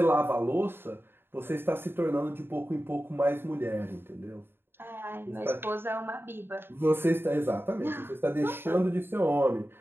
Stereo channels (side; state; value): left; late; 0.11 ms